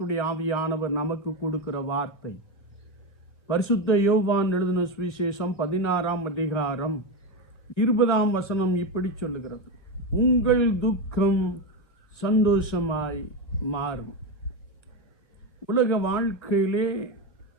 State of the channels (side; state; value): right; late; 1.9 ms